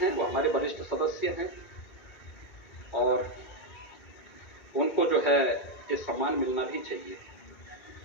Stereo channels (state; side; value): late; right; 2.2 ms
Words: वो हमारे वरिष्ठ सदस्य हैं और उनको जो है ये सम्मान मिलना भी चाहिए।